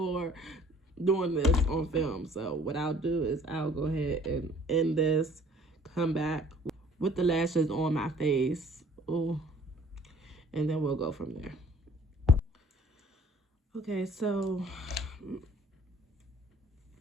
doing this on film. So what I'll do is I'll go ahead and end this, come back with the lashes on my face. Ooh, and then we'll go from there. Okay, so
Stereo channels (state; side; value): normal; both; correlation 0.55